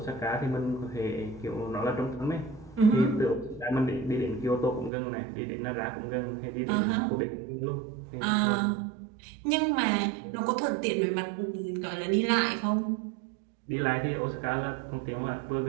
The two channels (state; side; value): drops out; left; at 4.9 s